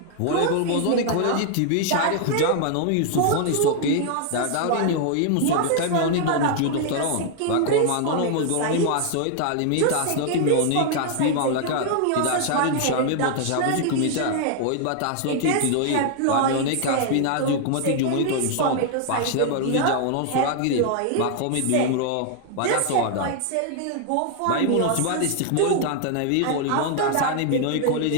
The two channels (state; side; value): different; both; correlation 0.00